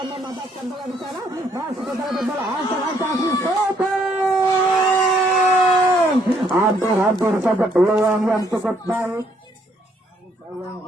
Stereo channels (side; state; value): both; normal; correlation 0.68